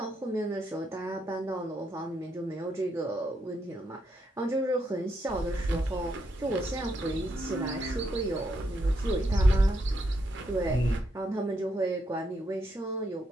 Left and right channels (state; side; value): normal; both; correlation 0.78